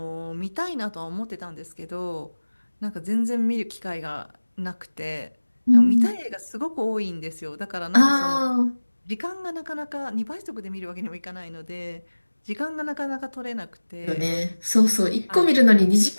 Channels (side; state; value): both; inverted; correlation -1.00